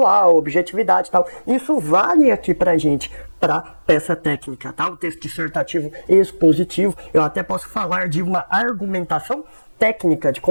objetividade e tal. Isso vale aqui pra gente, pra peça técnica, tá? O texto dissertativo expositivo. Eu até posso falar de uma argumentação técnica de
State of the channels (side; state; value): both; inverted; correlation -1.00